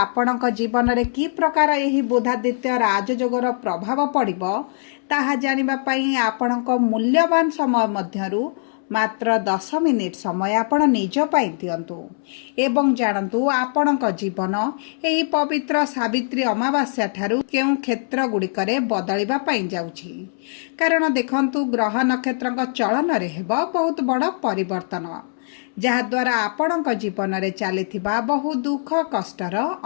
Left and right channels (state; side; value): silent; right; 64 dB below the other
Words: जीवन रे कि प्रकार एही बुधादित्य राजयोगर प्रभाव पड़िबो ताहा जानिबा पाई आपणक मूल्यवान समय मध्यरु मात्र 10 मिनिट समय आपण निज पाई दियंतु एवं जानतु आपणक जीवन एही पवित्र सावित्री अमावास्या ठारू केउ क्षेत्र गुड़िकरे बदलिबा पाई जाउछि। कारण देखंतु ग्रह नक्षत्रक चलन रे हेबो बहुत बड़ परिवर्तन जहाद्वारा आपणक जीवन रे चलिथिबा बहु दुख कष्टर